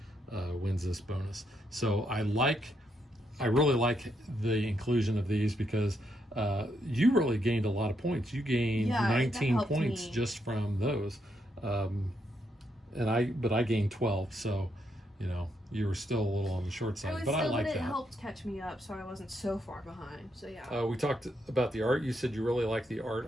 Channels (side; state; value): both; normal; correlation 0.78